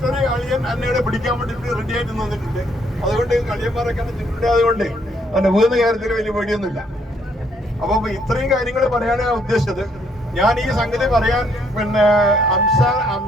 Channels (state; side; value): normal; both; correlation 0.69